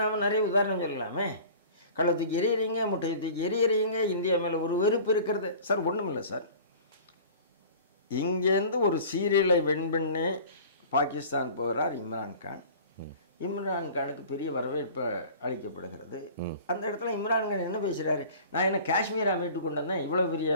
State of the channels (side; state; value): both; inverted; correlation -0.43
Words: நாம் நிறைய உதாரணம் சொல்லலாமே. கள்ள தூக்கி எறியறீங்க, முட்டையை தூக்கி எறியறீங்க, இந்தியா மேலே ஒரு வெறுப்பு இருக்கிறது. சார் ஒன்றும் இல்லை சார், இங்கேருந்து ஒரு சீரியலை வின் பண்ணி பாகிஸ்தான் போகிறார் இம்ரான்கான். இம்ரான்கானுக்கு பெரிய வரவேற்பு அளிக்கப்படுகிறது. அந்த இடத்துல இம்ரான்கான் என்ன பேசுகிறாரு, நான் என்ன காஷ்மீரா மீட்டு கொண்டு வந்தேன், இவ்வளோ